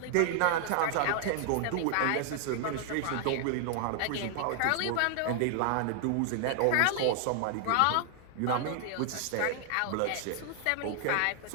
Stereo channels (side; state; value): both; different; correlation 0.00